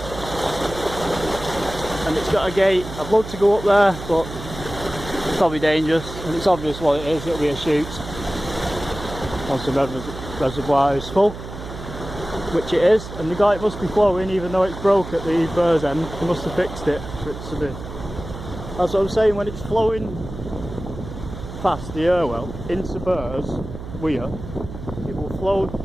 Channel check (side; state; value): right; noise; hum, 11 dB below the sound